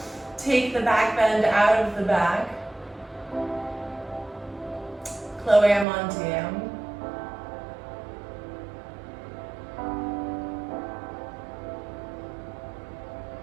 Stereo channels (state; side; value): drops out; left; at 5.9 s